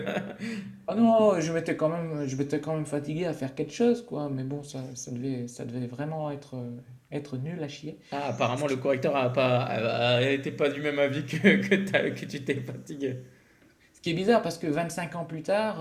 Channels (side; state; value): both; identical; correlation 1.00